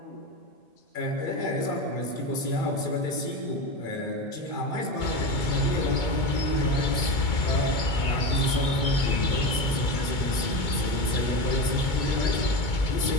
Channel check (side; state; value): right; late; 2.2 ms